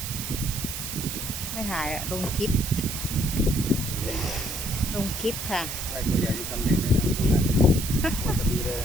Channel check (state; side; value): noise; right; hiss, 5 dB below the sound